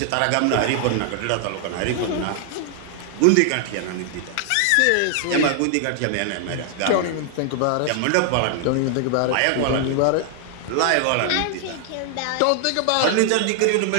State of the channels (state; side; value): different; both; correlation 0.00